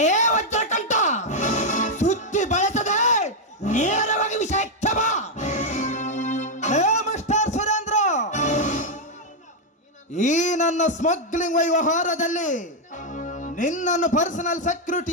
ವಜ್ರಕಂಠ, ಸುತ್ತಿ ಬಳಸದೆ ನೇರವಾಗಿ ವಿಷಯಕ್ಕೆ ಬಾ. ಹೇ ಮಿಸ್ಟರ್ ಸುರೇಂದ್ರ, ಈ ನನ್ನ ಸ್ಮಗ್ಲಿಂಗ್ ವ್ಯವಹಾರದಲ್ಲಿ ನಿನ್ನನ್ನು ಪರ್ಸನಲ್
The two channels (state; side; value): normal; both; correlation 0.00